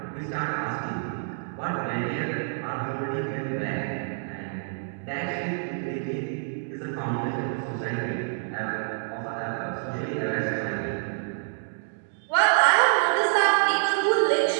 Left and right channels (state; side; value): silent; left; digital silence